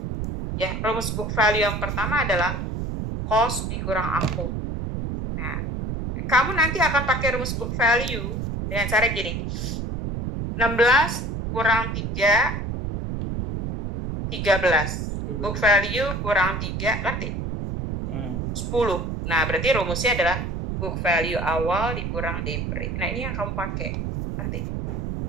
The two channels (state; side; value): noise; right; rumble, 3 dB below the sound